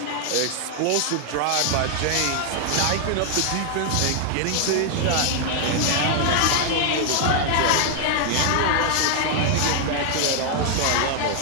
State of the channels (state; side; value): different; both; correlation 0.00